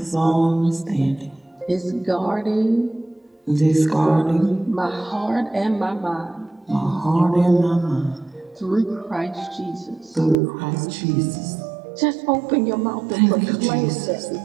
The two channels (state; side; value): drops out; left; at 10.4 s